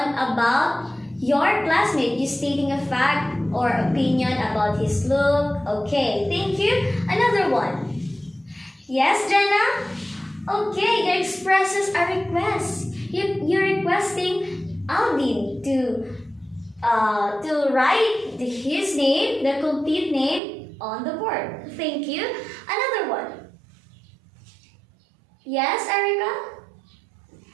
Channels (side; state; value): left; drops out; at 20.4 s